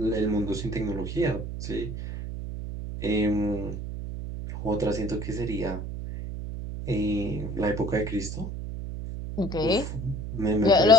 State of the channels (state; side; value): noise; right; hum, 6 dB below the sound